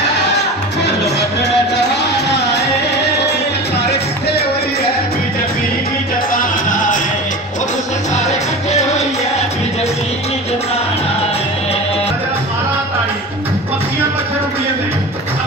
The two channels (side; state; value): both; normal; correlation 0.32